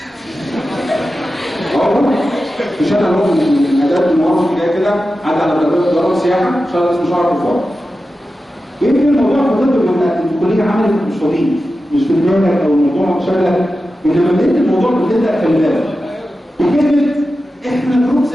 في شارع هو من اداب المواقف جاي كده عدى على دار السياحه، شارع اسمه شارع كفار. يمكن الموضوع في الطب لما الكليه عملت مش طبيعي، مش في دماغك او الموضوع شغلك، انما بدايه الموضوع بتبدا خلي بالك بكلمه احنا جروب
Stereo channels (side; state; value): both; normal; correlation 0.92